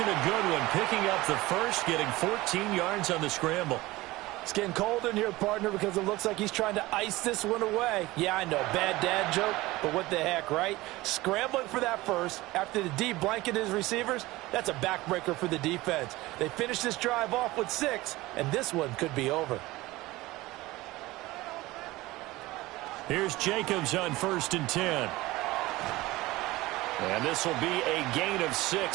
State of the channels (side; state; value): left; quieter; 19.3 dB